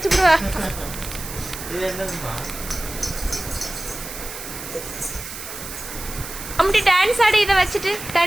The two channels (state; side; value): noise; right; hiss, 10 dB below the sound